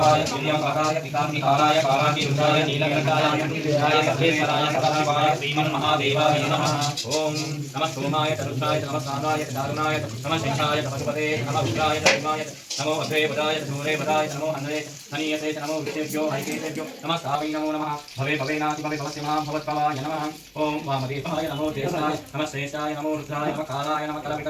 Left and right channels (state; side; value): identical; both; correlation 1.00